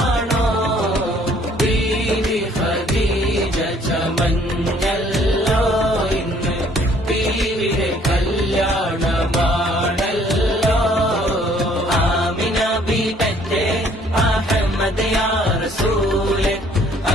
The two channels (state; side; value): normal; both; correlation 0.61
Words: ബീവി ഖദീജ ചമഞ്ഞല്ലോ ഇന്ന് ബീവിയുടെ കല്യാണമാണല്ലോ. ആമിന ബീബത്തെ അഹമ്മദ് യാ റസൂലെ